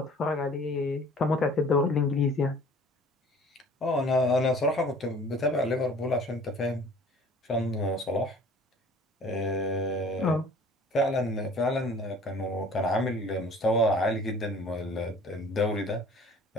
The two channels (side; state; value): both; normal; correlation 0.49